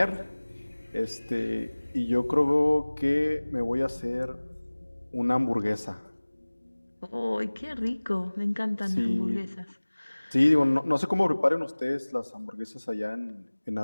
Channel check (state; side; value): inverted; both; correlation -1.00